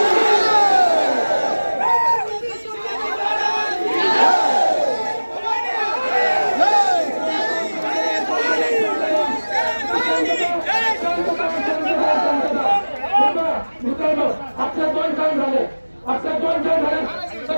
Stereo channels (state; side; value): inverted; both; correlation -1.00